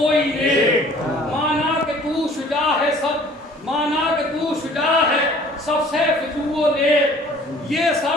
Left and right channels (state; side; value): normal; both; correlation 0.52